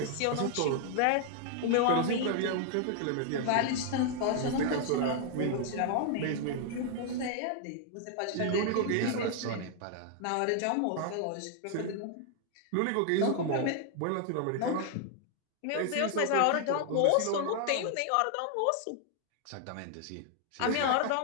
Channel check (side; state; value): both; different; correlation 0.00